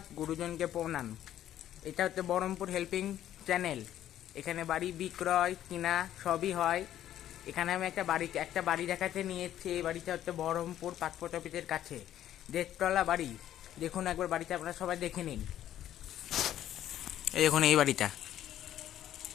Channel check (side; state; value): right; quieter; 11.8 dB